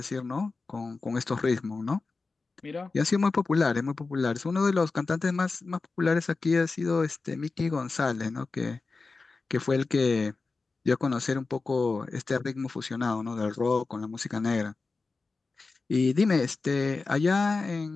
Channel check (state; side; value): quieter; right; 4.0 dB